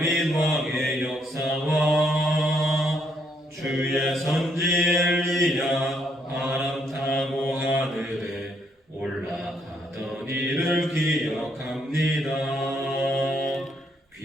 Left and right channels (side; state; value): both; normal; correlation 0.72